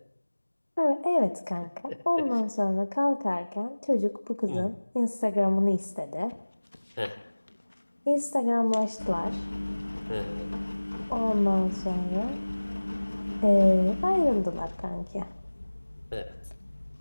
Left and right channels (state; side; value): inverted; both; correlation -1.00